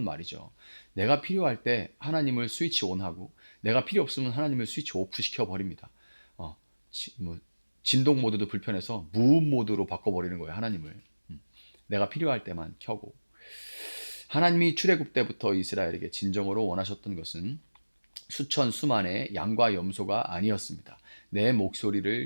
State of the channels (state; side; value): inverted; both; correlation -1.00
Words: 말이죠. 내가 필요할 때 하나님을 스위치 온하고 내가 필요 없으면 하나님을 스위치 오프 시켜버립니다. 뭐 진동 모드도 불편해서 무음 모드로 바꿔버리는 거예요. 하나님을. 내가 필요할 때만 켜고. 하나님이 출애굽 때부터 이스라엘에게 진정으로 원하셨던 것은 수천 수만의 양과 염소가 아니었습니다. 내